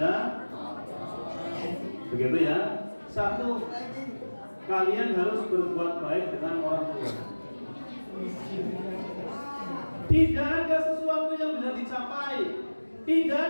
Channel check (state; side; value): inverted; both; correlation -1.00